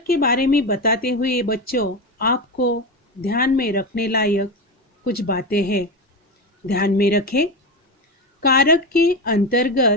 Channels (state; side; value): normal; both; correlation 0.18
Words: के बारे में बताते हुए बच्चों, आपको ध्यान में रखने लायक कुछ बातें हैं। ध्यान में रखें। कारक के